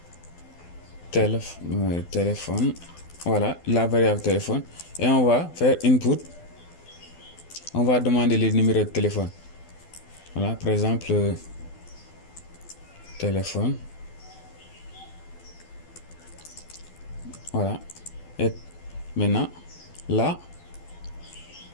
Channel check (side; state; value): right; late; 12 ms